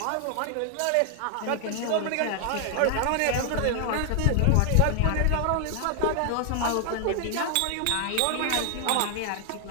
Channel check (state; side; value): different; both; correlation 0.00